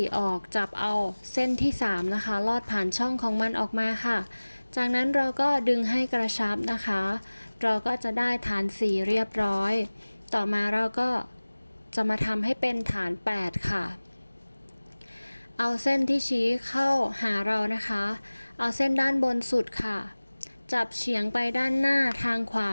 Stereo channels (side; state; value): both; inverted; correlation -1.00